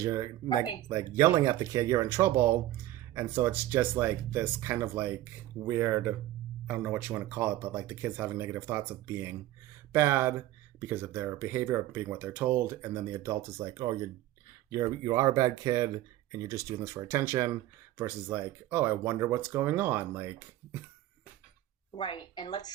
you're like yelling at the kid, you're in trouble, And so it's just like this kind of like weird, I don't know what you want to call it, but like the kids having negative thoughts of being bad because of their behavior, of being what they're told, and then the adult is like, oh, you are a bad kid and you're just doing this for attention, versus like, oh, I wonder what's going on. Like, Right. And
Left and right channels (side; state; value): left; quieter; 14.7 dB